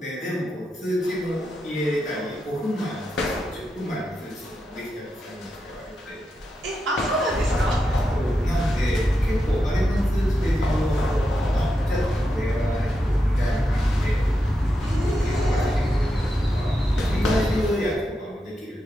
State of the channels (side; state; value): both; normal; correlation 0.87